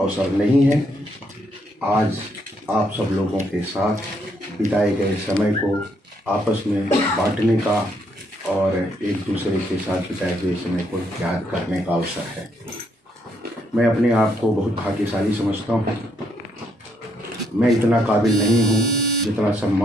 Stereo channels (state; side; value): normal; both; correlation 0.73